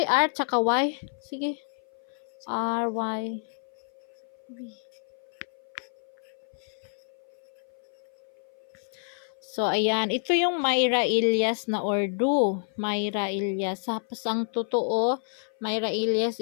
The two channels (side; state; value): right; silent; 55 dB below the other